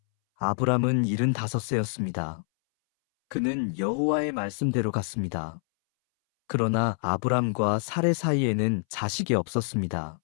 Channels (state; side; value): silent; right; 60 dB below the other